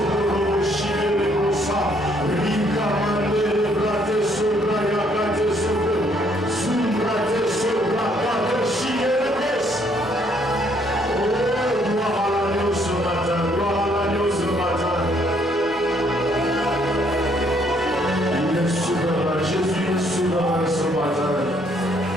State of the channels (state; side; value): normal; both; correlation 0.67